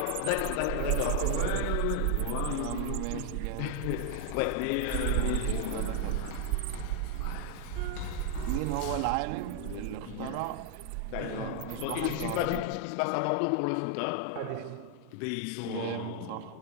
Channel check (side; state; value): both; different; correlation 0.00